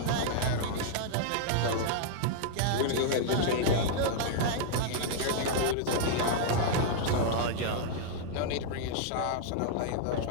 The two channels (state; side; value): different; both; correlation -0.01